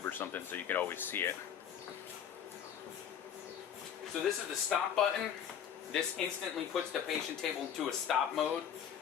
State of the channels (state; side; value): quieter; right; 8.8 dB